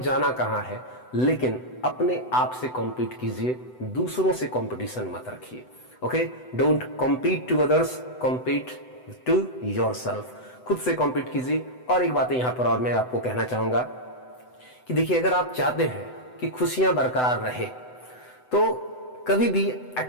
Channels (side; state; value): right; late; 7.9 ms